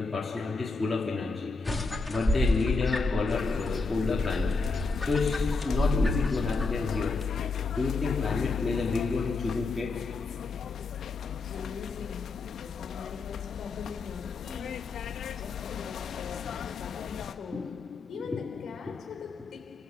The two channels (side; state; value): right; quieter; 3.9 dB